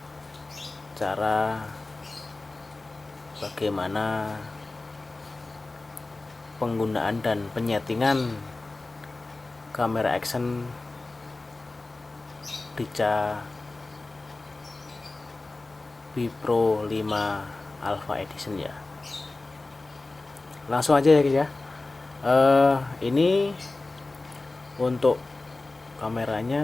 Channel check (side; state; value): right; quieter; 3.2 dB